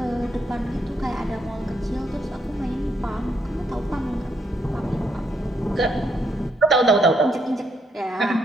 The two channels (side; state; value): both; normal; correlation 0.75